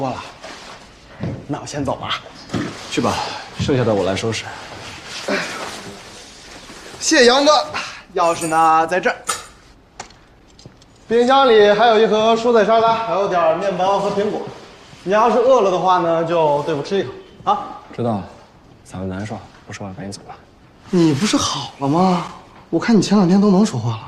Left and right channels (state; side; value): identical; both; correlation 1.00